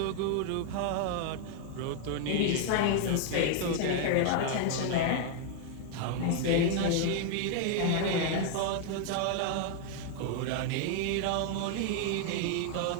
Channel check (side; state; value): both; different; correlation 0.00